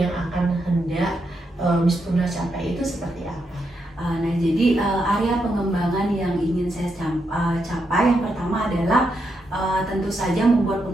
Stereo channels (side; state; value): both; normal; correlation 0.82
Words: akan hendak Miss Purna capai itu seperti apa? Nah, jadi area pengembangan yang ingin saya capai yang pertama adalah tentu saja membuat